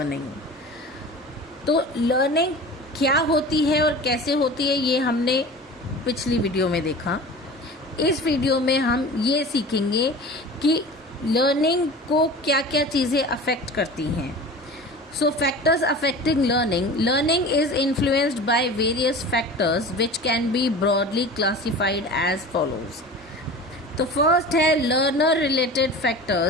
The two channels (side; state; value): both; normal; correlation 0.37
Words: तो learning क्या होती है और कैसे होती है ये हमने पिछली वीडियो में देखा। इस वीडियो में हम ये सीखेंगे कि लर्निंग को क्या क्या चीज़ें अफेक्ट करती हैं। So factors affecting learning is influenced by various factors which can be broadly classified as follows. तो फर्स्ट है लर्नर रिलेटेड